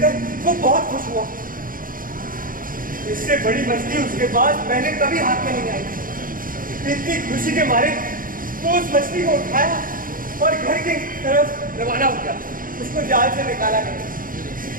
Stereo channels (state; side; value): late; left; 0.40 ms